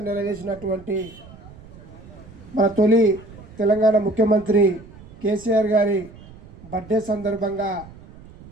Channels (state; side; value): noise; right; rumble, 20 dB below the sound